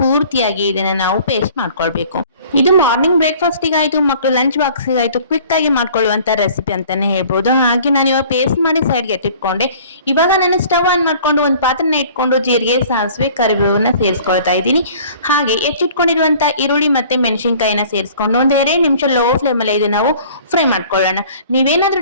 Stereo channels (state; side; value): inverted; both; correlation -0.50